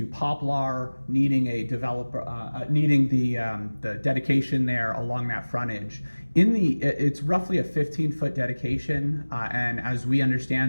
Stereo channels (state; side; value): inverted; both; correlation -1.00